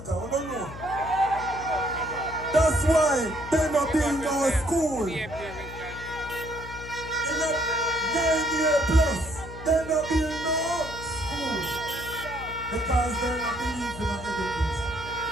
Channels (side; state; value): left; noise; hum, 13 dB below the sound